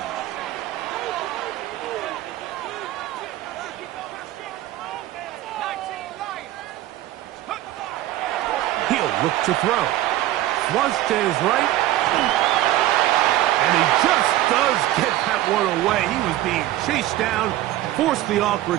He'll look to throw. Flush to his right. And he just does get that one away. He was being chased down, forced the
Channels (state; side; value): quieter; left; 14.8 dB